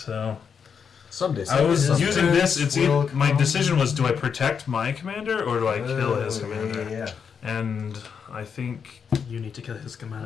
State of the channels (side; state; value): right; quieter; 6.7 dB